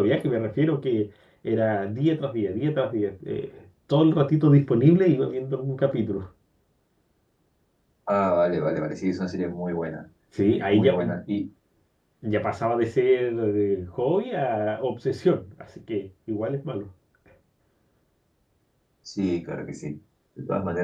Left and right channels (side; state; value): both; identical; correlation 1.00